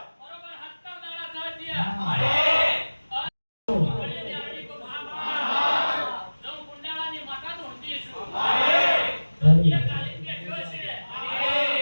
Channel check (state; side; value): inverted; both; correlation -1.00